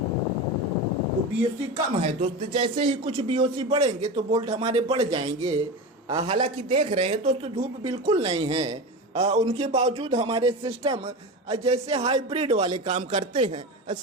तो BOC कम है दोस्त। जैसे ही कुछ BOC बढ़ेंगे तो बोल्ट हमारे बढ़ जाएंगे। हालांकि देख रहे हैं दोस्तों, धूप बिल्कुल नहीं है, उनके बावजूद हमारे सिस्टम जैसे हाइब्रिड वाले काम करते हैं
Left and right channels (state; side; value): normal; both; correlation 0.25